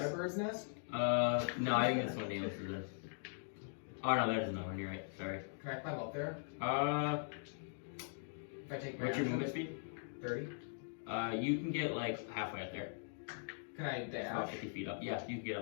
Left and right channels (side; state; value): right; silent; digital silence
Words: bird's nest? No, I think that's what Naileth is. Oh no, that is another one. You're right. Sorry. Can I climb up there? If If I take my what's your action? movement speed? 30. You can get like halfway up there. Can I About dash? 50 feet up. Yeah, you can get